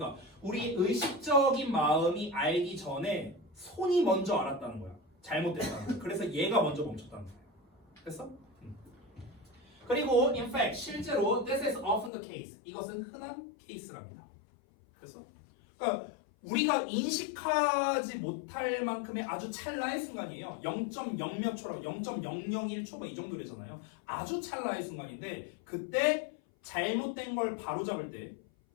우리 의식적인 마음이 알기 전에 손이 먼저 알았다는 거야. 잘못됐다는 거야. 그래서 얘가 먼저 멈췄다는 거야. 됐어? 그리고 in fact 실제로 this is often the case. 이것은 흔한 케이스랍니다. 그래서 그러니까 우리가 인식하지 못할 만큼의 아주 찰나의 순간이에요. 0.0몇 초라고 0.001초 뭐 이 정도 되잖아요. 아주 찰나의 순간인데 그때 잘못된 걸 바로잡을 때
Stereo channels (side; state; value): right; drops out; at 12.1 s